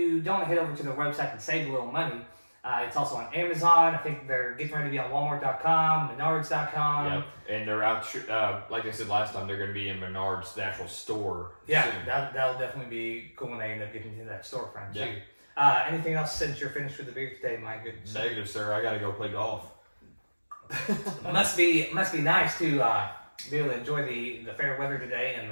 don't head over to the website and save a little money, it's also on Amazon. I think they're getting ready to be on Walmart.com, Menards.com. Yep. And they're out, like I said last time, they're going to be in Menards, the actual store. Yeah, soon. that'll definitely be cool when they end up getting into that storefront Yeah. too. Anything else since you're finished with the beer today, my goodness? Negative, sir. I got to go play golf. must be nice to be able to enjoy the fair weather today and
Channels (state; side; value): inverted; both; correlation -1.00